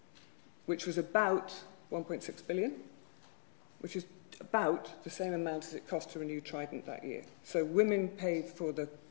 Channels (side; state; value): right; silent; digital silence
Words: which was about 1.6 billion, which is about the same amount as it cost to renew Trident that year. So women paid for the